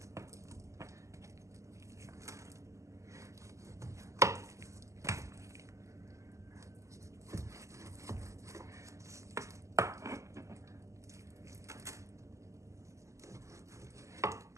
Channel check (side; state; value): left; late; 0.15 ms